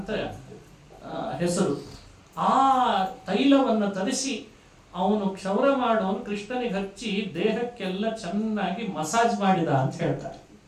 ಹೆಸರು. ಆ ತೈಲವನ್ನು ತರಿಸಿ ಅವನು ಕ್ಷೌರ ಮಾಡೋನು ಕೃಷ್ಣನಿಗೆ ಹಚ್ಚಿ ದೇಹಕ್ಕೆಲ್ಲ ಚೆನ್ನಾಗಿ ಮಸಾಜ್ ಮಾಡಿದ ಅಂತ ಹೇಳ್ತಾರೆ.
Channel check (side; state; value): both; identical; correlation 1.00